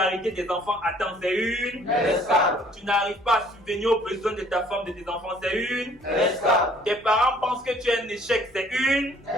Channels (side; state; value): both; normal; correlation 0.58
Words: des enfants à temps, c'est une escale. Tu n'arrives pas à subvenir aux besoins de ta femme, de tes enfants, c'est une escale. Tes parents pensent que tu es un échec, c'est une